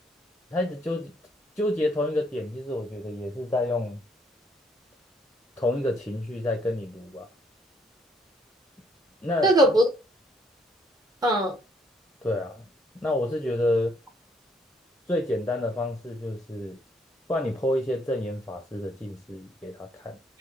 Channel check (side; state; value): both; normal; correlation 0.68